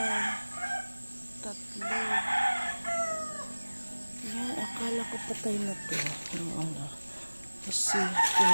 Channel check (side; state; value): both; inverted; correlation -1.00